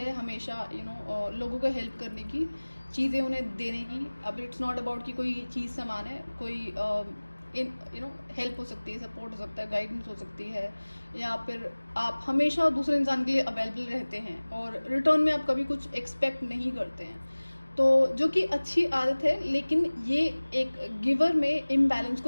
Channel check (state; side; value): inverted; both; correlation -1.00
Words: हमेशा लोगों को हेल्प करने की, चीज़ें उन्हें देने की। अब इट्स नॉट अबाउट कि कोई चीज़ सामान है, कोई हेल्प हो सकती है, सपोर्ट हो सकता है, गाइडेंस हो सकती है, या फिर आप हमेशा दूसरे इंसान के लिए अवेलेबल रहते हैं और रिटर्न में आप कभी कुछ एक्सपेक्ट नहीं करते हैं। तो जो कि अच्छी आदत है, लेकिन ये एक गिवर में इम्बैलेंस